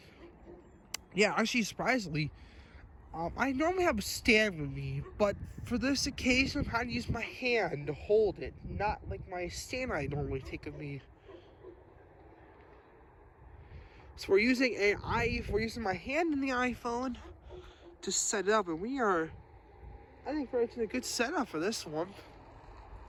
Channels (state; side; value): identical; both; correlation 1.00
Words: Yeah, actually, surprisingly, I normally have a stand with me, but for this occasion, I'm having to use my hand to hold it, not like my stand I normally take with me. So we're using my hand in the iPhone to set it up, and I think we're in a good setup for this one.